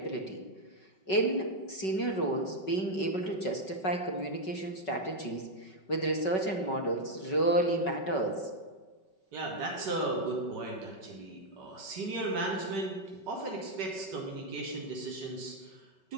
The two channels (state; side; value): late; right; 5.3 ms